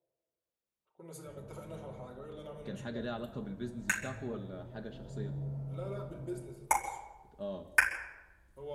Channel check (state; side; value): identical; both; correlation 1.00